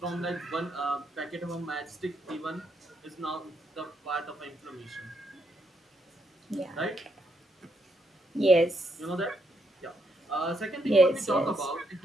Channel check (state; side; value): normal; both; correlation 0.77